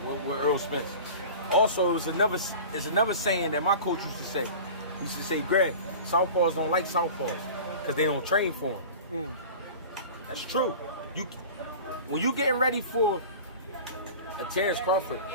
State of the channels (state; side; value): inverted; both; correlation -0.37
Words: Spence. Also, it's another saying that my coach used to say. He used to say, Greg, southpaws don't like southpaws because they don't train for them. That's true. When you getting ready for a Terence Crawford,